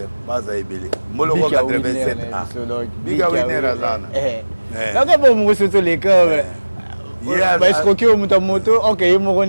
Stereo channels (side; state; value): both; inverted; correlation -1.00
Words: Baza Ebele. Moloko 87A. Biga Winner Azana. Donc, bon, moi, c'est les cœurs. Bah, escroquer au moto, ok, il m'a